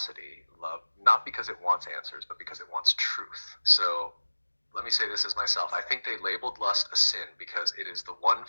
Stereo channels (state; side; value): inverted; both; correlation -1.00